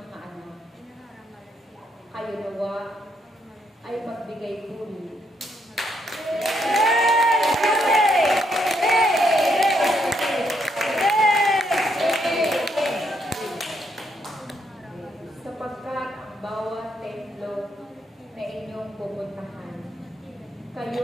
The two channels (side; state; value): both; normal; correlation 0.75